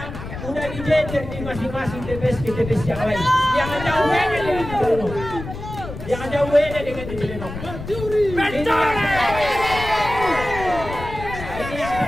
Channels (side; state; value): left; noise; rumble, 10 dB below the sound